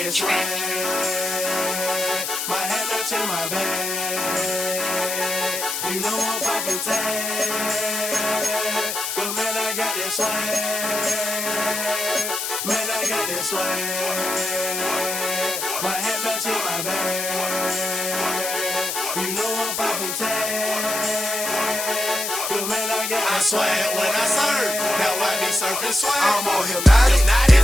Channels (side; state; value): left; noise; hiss, 3 dB below the sound